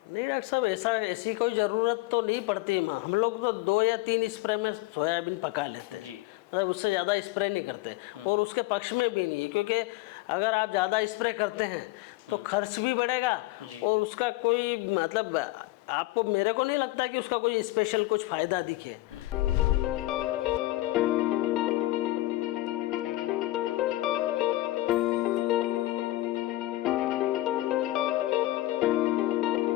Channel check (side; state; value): right; quieter; 17.9 dB